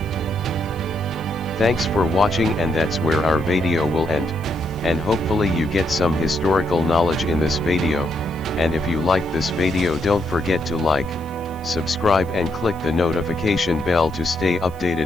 Thanks for watching, and that's where our video will end. And hopefully you get some historical knowledge in this video, and if you like this video, don't forget to like, subscribe and click the notification bell to stay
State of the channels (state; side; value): noise; left; hiss, 27 dB below the sound